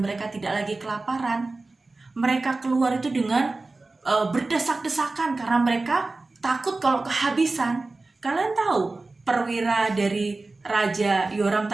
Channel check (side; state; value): left; quieter; 3.4 dB